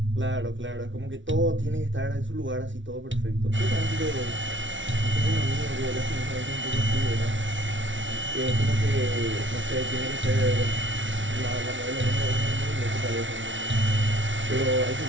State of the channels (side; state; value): left; late; 0.56 ms